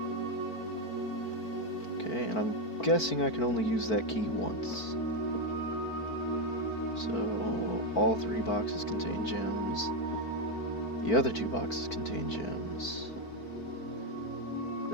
Okay, and I'm guessing I can only use that key once. So, all 3 boxes contain gems. The other 2 boxes contain gems.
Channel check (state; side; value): late; right; 4.5 ms